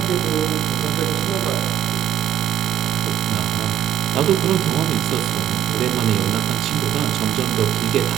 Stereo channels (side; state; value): left; quieter; 10.4 dB